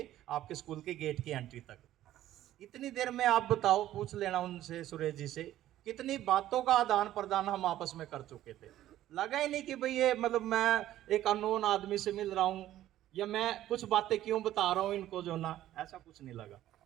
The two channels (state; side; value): quieter; left; 13.4 dB